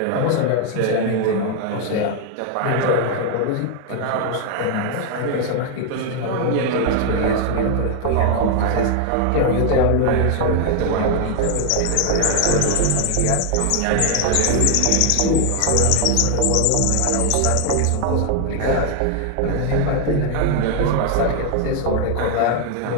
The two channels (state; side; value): different; both; correlation 0.00